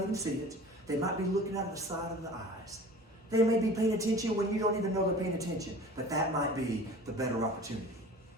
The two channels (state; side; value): normal; both; correlation 0.42